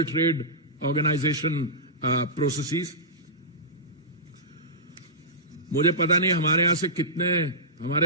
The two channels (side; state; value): both; normal; correlation -0.17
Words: Trade Organization processes. मुझे पता नहीं हमारे यहाँ से कितने